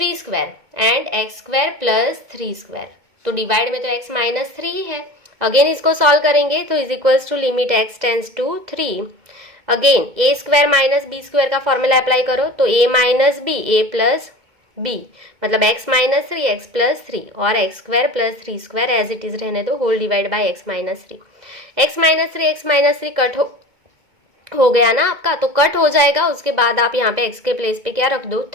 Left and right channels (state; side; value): late; left; 2.2 ms